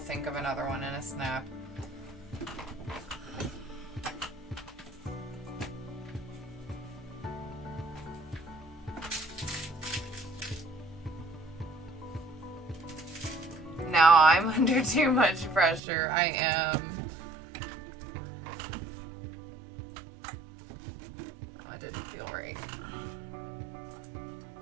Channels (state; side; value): drops out; left; at 15.8 s